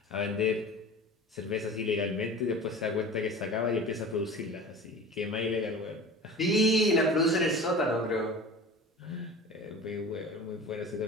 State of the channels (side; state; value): both; normal; correlation 0.38